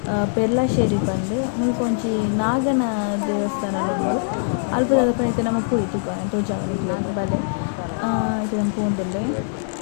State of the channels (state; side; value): silent; right; digital silence